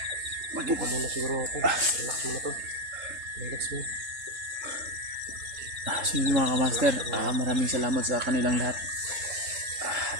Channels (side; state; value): left; late; 3.7 ms